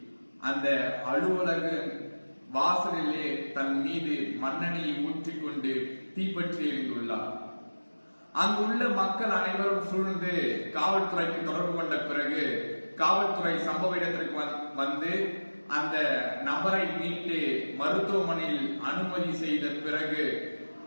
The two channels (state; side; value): inverted; both; correlation -1.00